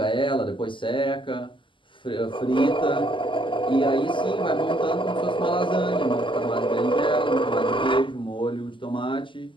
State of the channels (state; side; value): late; right; 0.25 ms